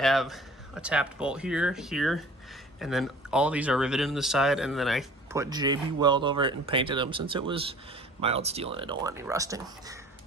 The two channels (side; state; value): both; normal; correlation 0.47